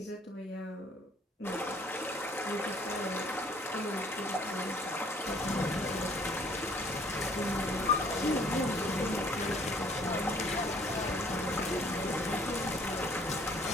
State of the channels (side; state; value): both; normal; correlation 0.59